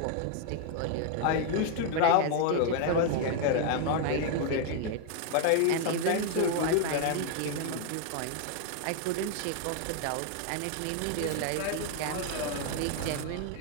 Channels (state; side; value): different; both; correlation 0.00